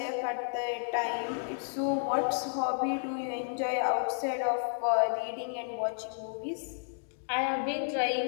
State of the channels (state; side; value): silent; right; digital silence